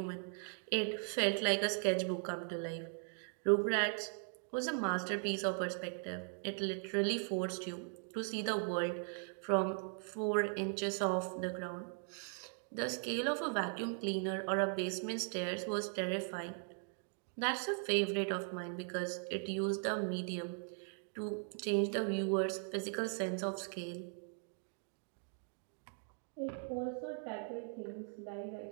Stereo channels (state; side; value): silent; left; 52 dB below the other